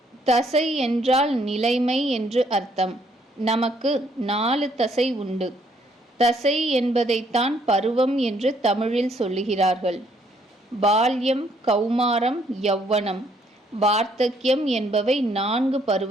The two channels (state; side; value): normal; both; correlation 0.68